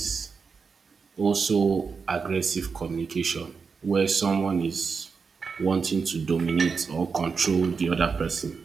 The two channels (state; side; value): quieter; left; 5.3 dB